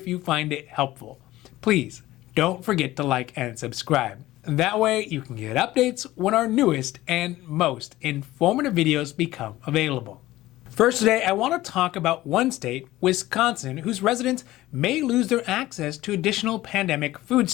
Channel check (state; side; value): quieter; right; 16.5 dB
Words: you find it helpful, please don't forget to like and subscribe. That way you can get updates when our newest and most informative videos become available. First today, I want to talk about one state, Wisconsin, whose residents may lose their access to additional pandemic food